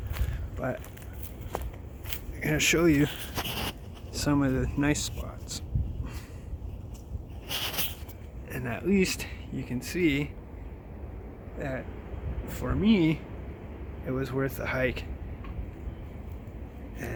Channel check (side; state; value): both; identical; correlation 1.00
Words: but I'm going to show you some of the nice spots, and at least you can see that for me it was worth the hike.